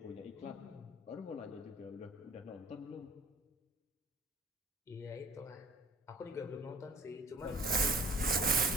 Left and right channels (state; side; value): normal; both; correlation 0.49